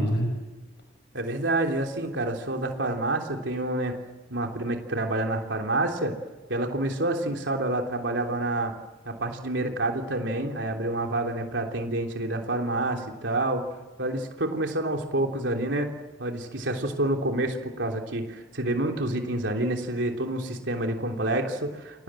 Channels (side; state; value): both; normal; correlation 0.15